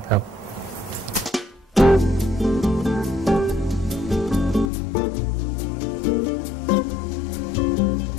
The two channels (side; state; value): right; drops out; at 4.7 s